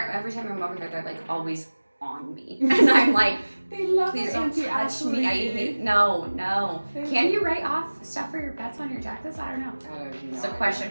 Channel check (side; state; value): both; inverted; correlation -1.00